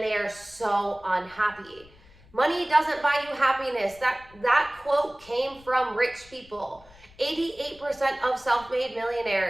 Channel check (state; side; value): noise; left; rumble, 25 dB below the sound